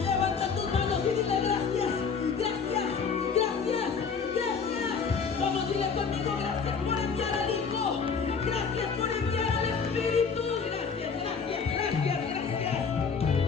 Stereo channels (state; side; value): quieter; right; 5.6 dB